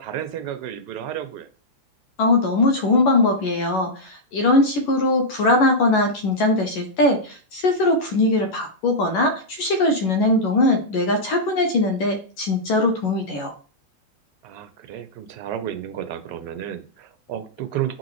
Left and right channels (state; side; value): late; right; 11 ms